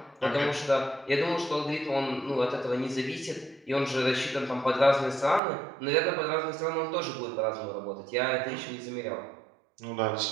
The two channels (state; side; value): drops out; left; at 5.4 s